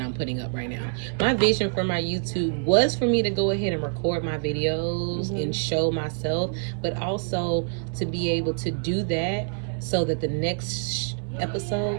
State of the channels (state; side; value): silent; left; 61 dB below the other